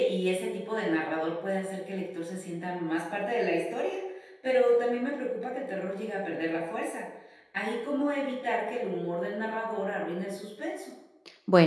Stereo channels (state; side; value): identical; both; correlation 1.00